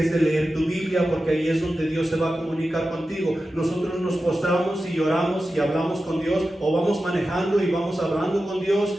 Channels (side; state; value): both; normal; correlation 0.93